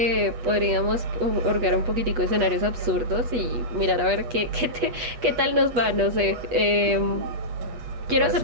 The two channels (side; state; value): left; late; 8.3 ms